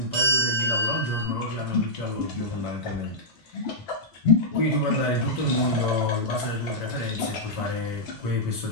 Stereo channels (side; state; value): both; normal; correlation -0.08